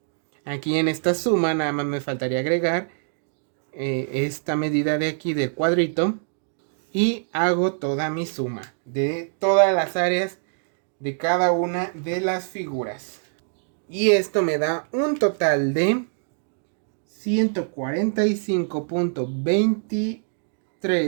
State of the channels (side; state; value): left; silent; digital silence